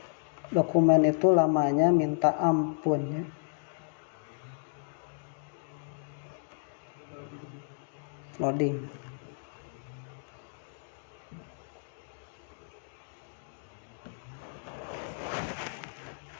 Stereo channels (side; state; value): right; silent; digital silence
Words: dokumen itu lamanya minta ampun ya. Loading.